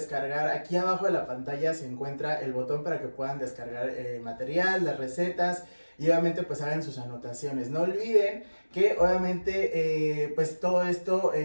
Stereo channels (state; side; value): inverted; both; correlation -1.00